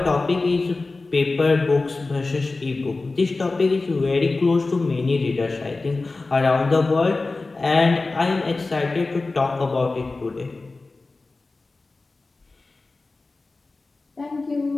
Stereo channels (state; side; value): quieter; right; 3.5 dB